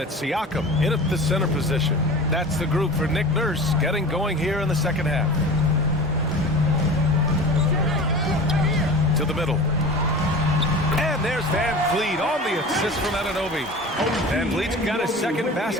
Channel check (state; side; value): normal; both; correlation 0.35